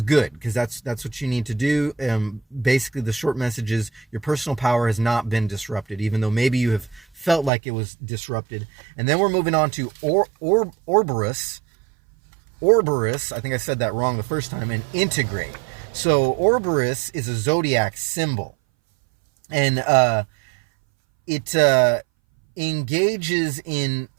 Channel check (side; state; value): left; drops out; at 7.5 s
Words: good, because that's what you need to do. Basically, the short message is your personal power has not been disrupted, even though maybe you have felt like it was disrupted. And then we're moving on to Orborus. I think I said that wrong the first time. And integrate. So Orborus is a zodiac symbol, and it engages in.